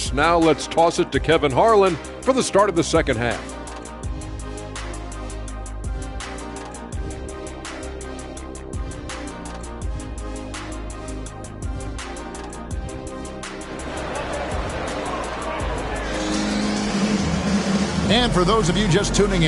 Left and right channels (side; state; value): both; identical; correlation 1.00